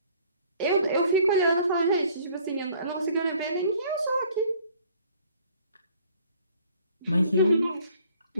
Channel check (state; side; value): inverted; both; correlation -0.57